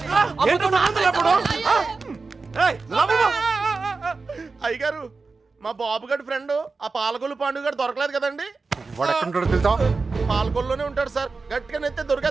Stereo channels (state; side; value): quieter; left; 4.1 dB